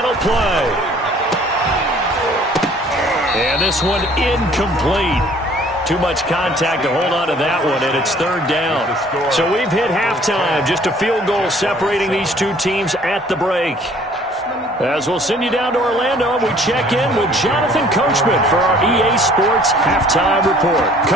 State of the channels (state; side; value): normal; both; correlation 0.56